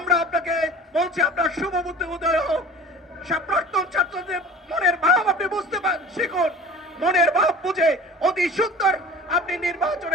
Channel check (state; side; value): normal; both; correlation 0.41